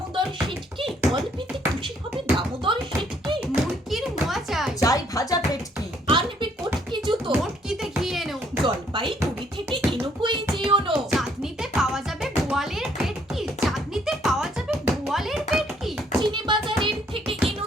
শেঠকি, অল্পেতে খুশি হবে দামোদর শেঠকি। মুরগির মোয়া চাই, চাই ভাজা পেটকি, আনবে কটকি জুতো, মোটকিতে ঘি এনো, জলপাইগুড়ি থেকে এনুকোই যেওনো। চাঁদনিতে পাওয়া যাবে বোয়ালের পেটকি, চাঁদনিতে পাওয়া যাবে বোয়ালের পেটকি। চিনি বাজারের থেকে এনো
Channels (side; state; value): both; normal; correlation 0.66